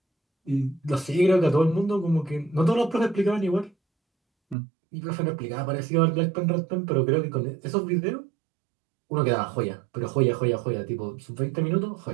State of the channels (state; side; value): drops out; left; at 4.5 s